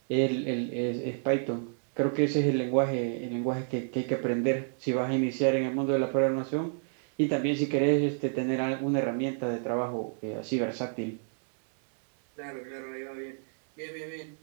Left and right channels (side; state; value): left; silent; digital silence